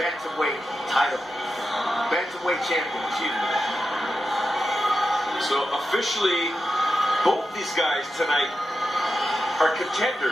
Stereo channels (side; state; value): both; normal; correlation 0.90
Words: title. Bantamweight champion, excuse me. So officially, both these guys tonight are